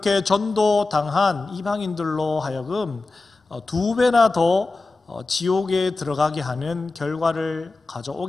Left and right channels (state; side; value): quieter; right; 3.5 dB